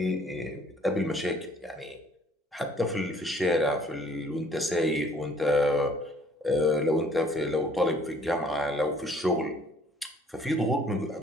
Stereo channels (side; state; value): both; normal; correlation 0.58